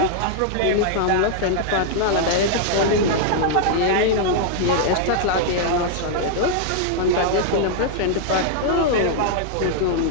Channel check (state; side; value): different; both; correlation -0.01